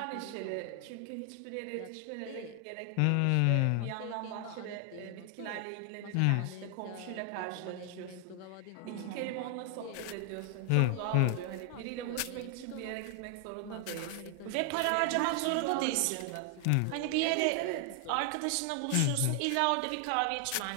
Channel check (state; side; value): different; both; correlation 0.00